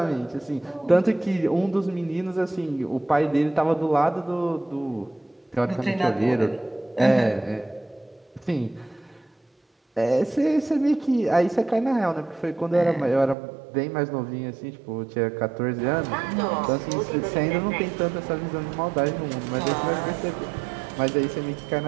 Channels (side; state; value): left; drops out; at 13.4 s